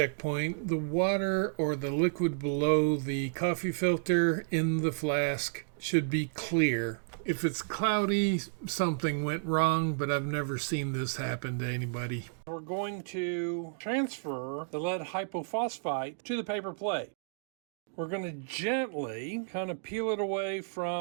The water or the liquid below the coffee filter in the flask should be clear. If it's cloudy, something went wrong, but I've never seen this happen to anybody. We're going to transfer the lead hypophosphite to the paper plate. We're going to gently kind of peel it away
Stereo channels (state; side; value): silent; left; digital silence